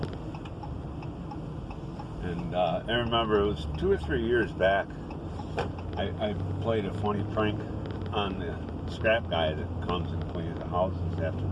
And I remember it was 2 or 3 years back, I played a funny prank on the scrap guy that comes and cleans the houses after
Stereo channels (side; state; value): both; identical; correlation 1.00